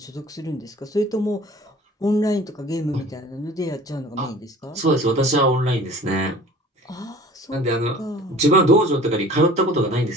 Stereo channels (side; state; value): both; normal; correlation 0.46